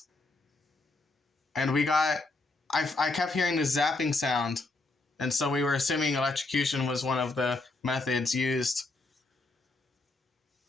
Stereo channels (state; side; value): quieter; right; 3.2 dB